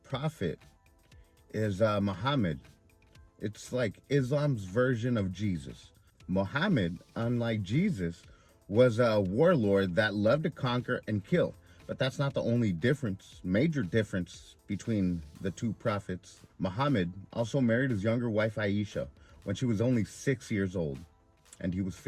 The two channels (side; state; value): both; identical; correlation 1.00